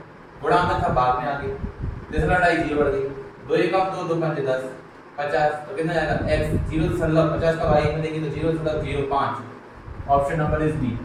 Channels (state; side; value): identical; both; correlation 1.00